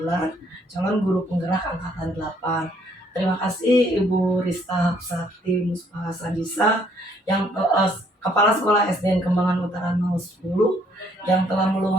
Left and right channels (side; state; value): both; normal; correlation 0.65